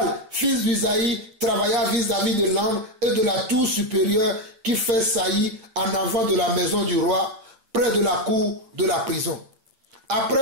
fils d'Usaï, travailla vis-à-vis de l'angle et de la tour supérieure qui fait saillie en avant de la maison du roi, près de la cour de la prison.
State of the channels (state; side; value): late; left; 8.8 ms